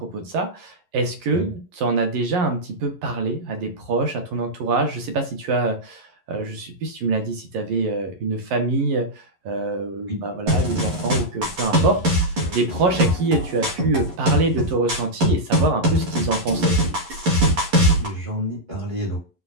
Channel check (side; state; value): left; late; 11 ms